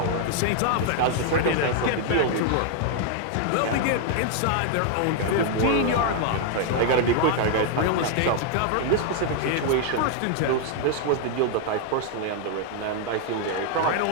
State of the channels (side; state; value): both; different; correlation 0.00